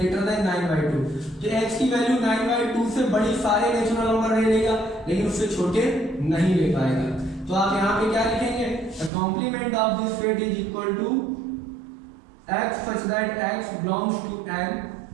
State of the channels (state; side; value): drops out; left; at 9.1 s